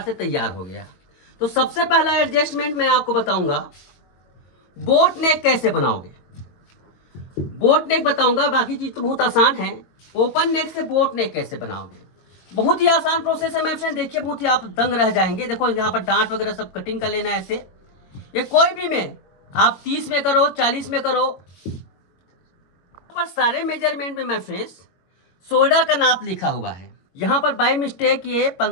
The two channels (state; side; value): late; right; 21 ms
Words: से तैयार हो गया। तो सबसे पहला एडजस्टमेंट मैं आपको बताऊंगा बोट नेक कैसे बनाओगे। बोट नेक बताऊंगा, बाकी चीज तो बहुत आसान है। ओपन नेक से बोट नेक कैसे बनाओगे, बहुत ही आसान प्रोसेस है। मैं फ्रेंड देखिए बहुत ही आप दंग रह जाएंगे। देखो यहाँ पर डांट वगैरह सब कटिंग कर लेना है ऐसे। ये कोई भी में आप 30 में करो 40 में करो, पर सारे मेजरमेंट में मैं फ्रेंड्स शोल्डर का नाप लिखा हुआ है। यहाँ पर बाय मिस्टेक ये